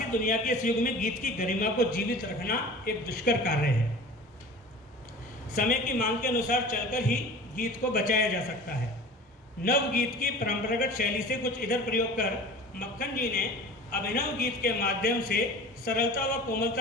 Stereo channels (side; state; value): both; normal; correlation 0.39